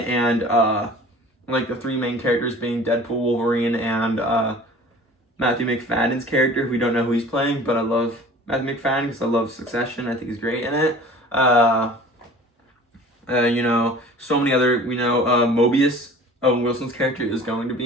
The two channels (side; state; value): both; normal; correlation 0.44